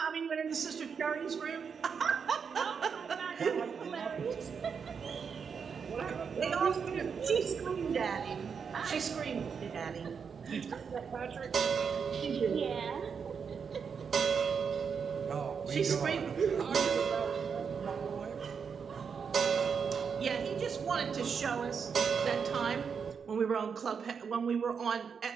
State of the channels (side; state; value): left; quieter; 6.3 dB